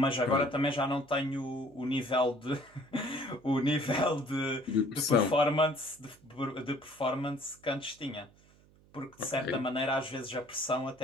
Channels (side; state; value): right; noise; hum, 28 dB below the sound